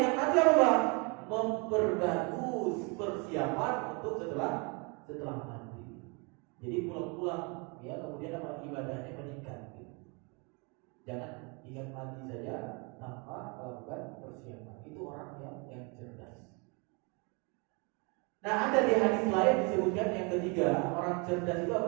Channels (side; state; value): left; quieter; 32.1 dB